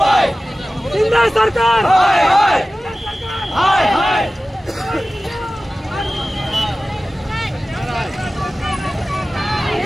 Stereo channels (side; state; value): both; normal; correlation 0.96